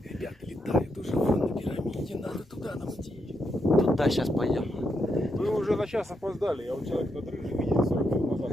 ребята летают уже вон на пирамиде, надо туда нам идти. Туда сейчас пойдем. Вы уже на час опоздали, я у человека над рыжей видел 40 минут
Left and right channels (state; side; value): normal; both; correlation 0.81